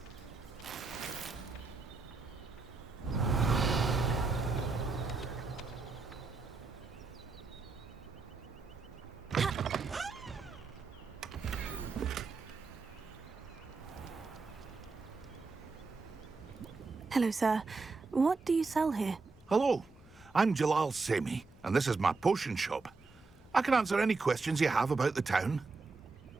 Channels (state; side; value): quieter; left; 4.1 dB